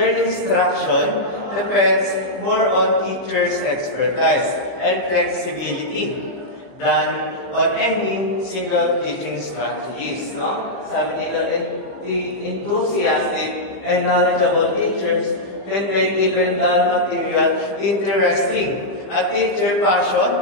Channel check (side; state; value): right; late; 15 ms